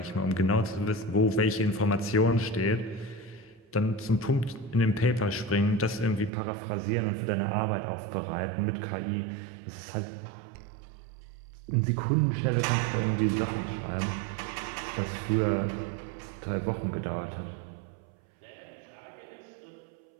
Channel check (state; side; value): drops out; left; at 6.3 s